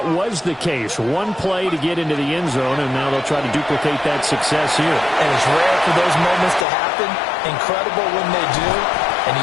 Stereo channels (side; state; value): right; drops out; at 6.7 s